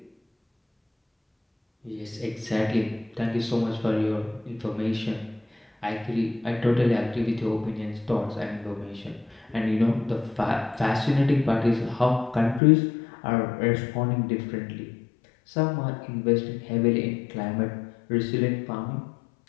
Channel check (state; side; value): drops out; right; at 12.6 s